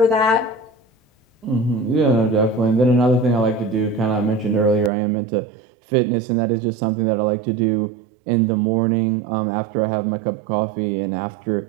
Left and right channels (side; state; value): left; drops out; at 4.9 s